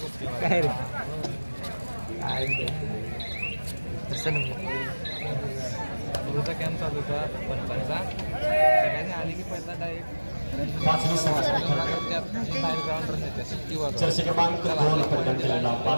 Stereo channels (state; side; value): inverted; both; correlation -1.00